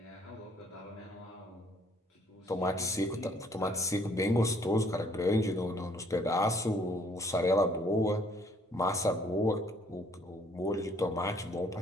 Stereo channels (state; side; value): normal; both; correlation 0.62